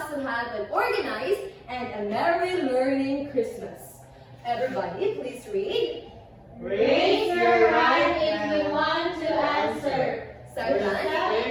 to have an organized and a merry learning Christmas. Everybody, please read. Raise your right if you want to answer. Second,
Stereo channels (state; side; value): identical; both; correlation 1.00